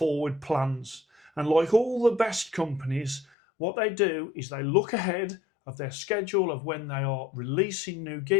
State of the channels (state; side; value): drops out; right; at 3.2 s